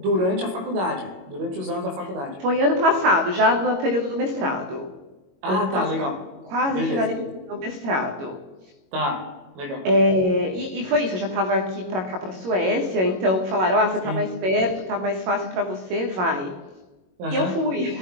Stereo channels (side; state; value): left; late; 22 ms